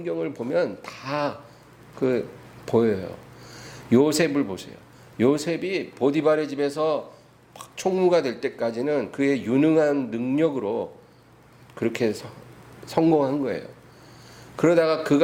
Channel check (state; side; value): identical; both; correlation 1.00